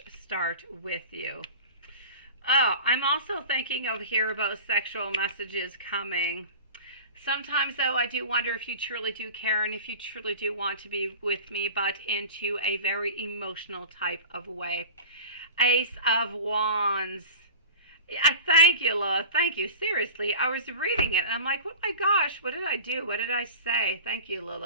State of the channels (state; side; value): inverted; both; correlation -0.36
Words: start with you. Oh, I'm also thinking over here about sexual messages coming. Sometimes, though, I do wonder if you truly do care and if you truly do want to be with me, but into a very emotional type of way. Ace of Wands. Yeah, thank you, Lois. Thank you. Seriously, I was reading it and I'm like, oh my gosh, what did I do? What did I say? Thank you,